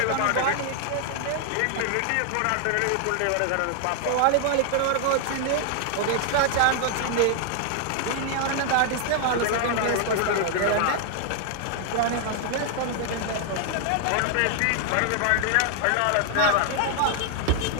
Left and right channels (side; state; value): both; different; correlation 0.00